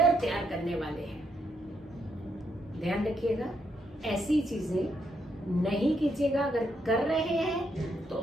तैयार करने वाले हैं। ध्यान रखिएगा, ऐसी चीजें नहीं कीजिएगा। अगर कर रहे हैं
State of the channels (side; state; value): both; normal; correlation 0.77